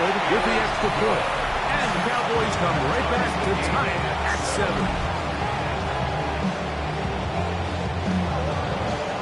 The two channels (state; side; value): identical; both; correlation 1.00